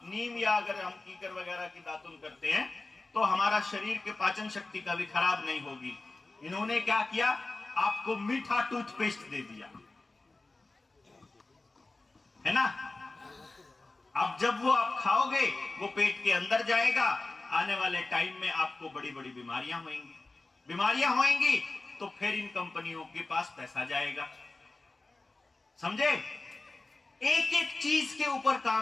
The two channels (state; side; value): quieter; right; 3.3 dB